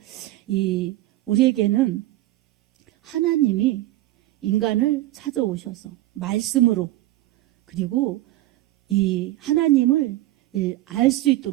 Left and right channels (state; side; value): quieter; left; 16.2 dB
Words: 우리에게는 하나님이 인간을 찾아오셔서 말씀으로 그리고 이 하나님을 알 수